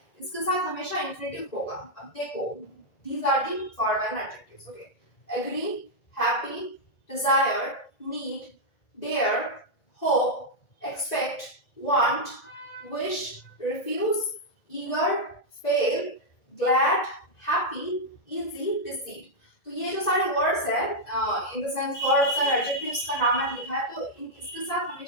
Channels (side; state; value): right; late; 1.9 ms